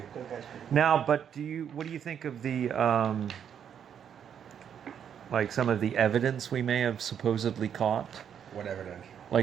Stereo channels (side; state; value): left; quieter; 8.5 dB